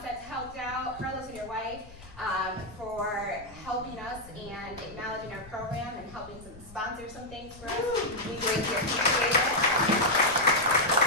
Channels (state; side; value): noise; left; rumble, 19 dB below the sound